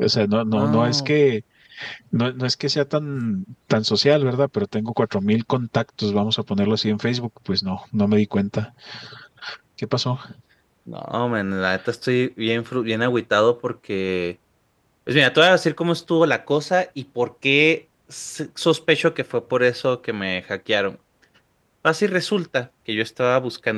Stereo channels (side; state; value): both; identical; correlation 1.00